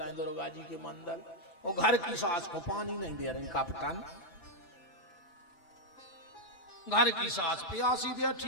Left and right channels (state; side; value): late; right; 5.9 ms